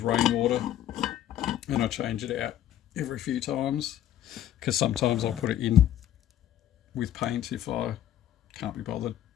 rainwater, and I change it out every few times because sometimes I'll put it in with paint if I can't be bothered,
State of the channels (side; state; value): right; quieter; 11.8 dB